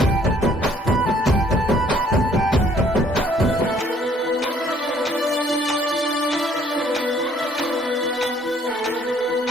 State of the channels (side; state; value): both; normal; correlation 0.62